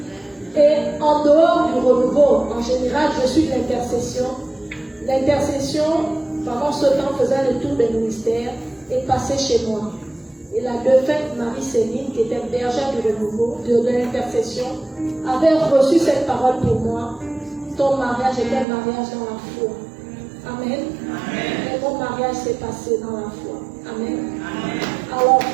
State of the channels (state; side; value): drops out; left; at 18.7 s